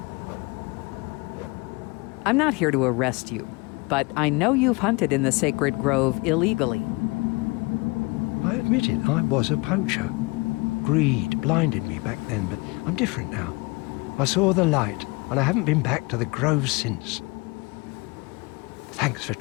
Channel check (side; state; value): right; quieter; 26.7 dB